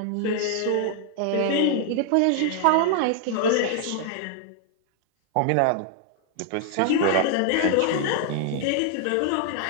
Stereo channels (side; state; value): both; different; correlation 0.00